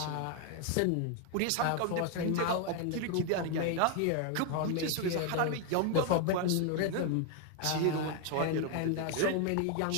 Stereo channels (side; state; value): both; different; correlation 0.01